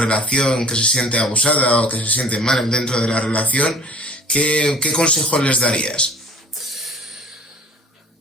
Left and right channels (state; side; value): normal; both; correlation 0.48